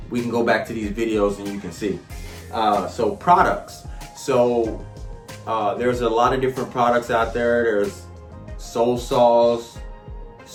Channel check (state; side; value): identical; both; correlation 1.00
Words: We can go back to these videos and you can see. So products. So there's a lot of different products out there. There's Soul Saws,